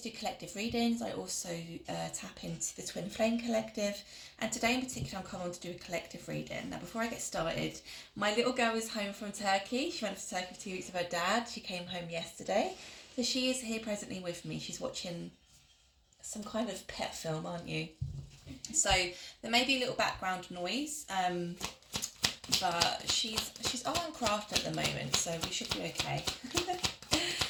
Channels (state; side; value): identical; both; correlation 1.00